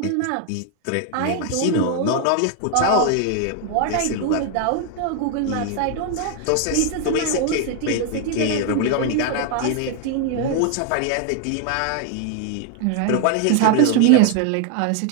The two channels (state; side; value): different; both; correlation 0.01